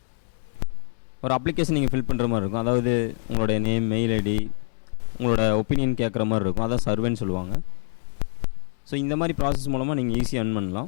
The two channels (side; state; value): right; silent; digital silence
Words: ஒரு அப்ளிகேஷன் நீங்கள் ஃபில் பண்ணுற மாதிரி இருக்கும். அதாவது உங்களோட நேம், மெயில் ஐடி, உங்களோட ஒப்பீனியன் கேட்குற மாதிரி இருக்கும். அதான் சர்வேன்னு சொல்லுவாங்க. ஸோ இந்த மாதிரி ப்ராசஸ் மூலமாக நீங்கள் ஈஸியாக earn